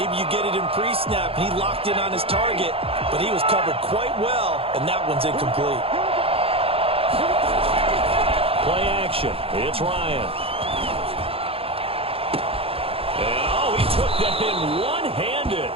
you get it in pre-snap, and he locked in on his target, but he was covered quite well, and that one's incomplete. Play action. It's Ryan. And, he took that in one-handed.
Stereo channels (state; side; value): late; left; 0.27 ms